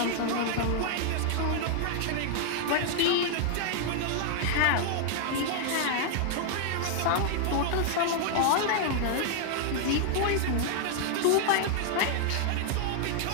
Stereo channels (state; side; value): different; both; correlation 0.00